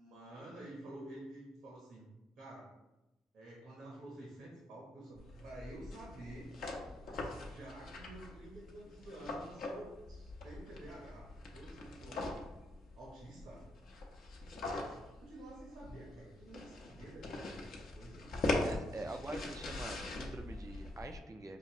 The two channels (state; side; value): normal; both; correlation 0.77